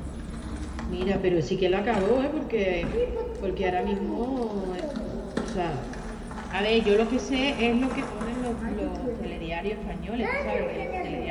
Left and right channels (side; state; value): both; identical; correlation 1.00